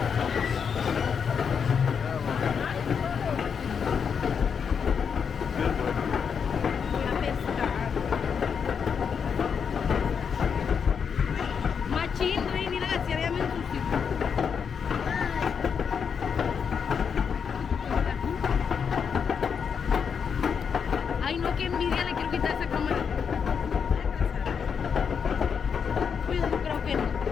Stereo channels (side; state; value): right; quieter; 6.7 dB